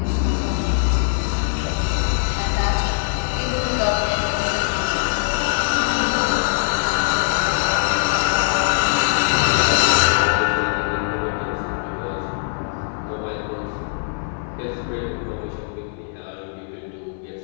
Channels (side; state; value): right; silent; digital silence